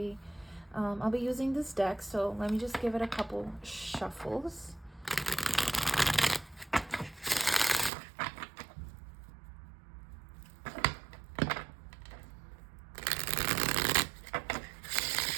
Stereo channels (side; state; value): left; drops out; at 7.9 s